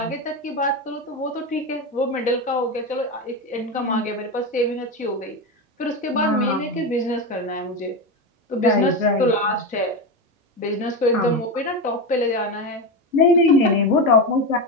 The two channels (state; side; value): normal; both; correlation 0.16